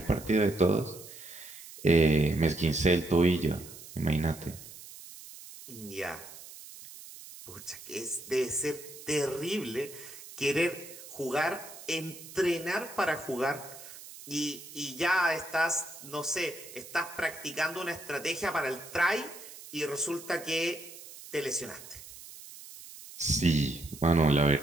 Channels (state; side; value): noise; right; hiss, 16 dB below the sound